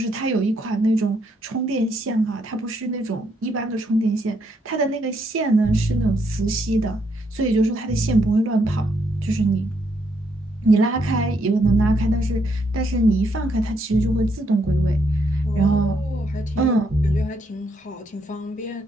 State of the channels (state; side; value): normal; both; correlation 0.75